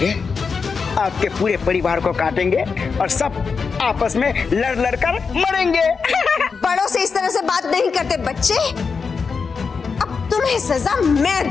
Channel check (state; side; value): quieter; right; 5.3 dB